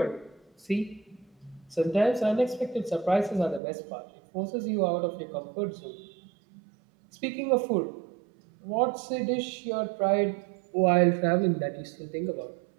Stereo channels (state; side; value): drops out; left; at 3.6 s